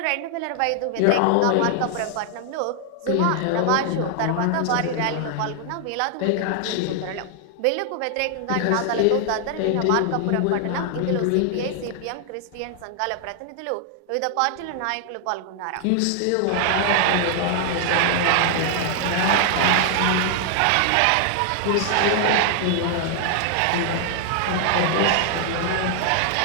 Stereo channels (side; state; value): both; different; correlation 0.00